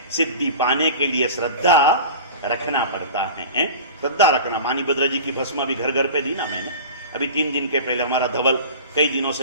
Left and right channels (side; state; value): both; inverted; correlation -0.35